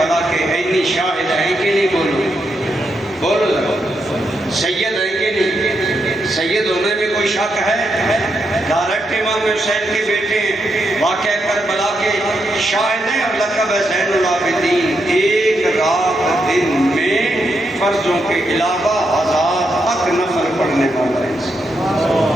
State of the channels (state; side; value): normal; both; correlation 0.82